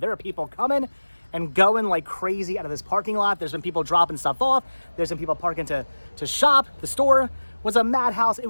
are people coming and going like crazy out of this parking lot. There's been people dropping stuff off. There's been people parking to shop. The store was a madhouse. It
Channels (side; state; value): both; inverted; correlation -1.00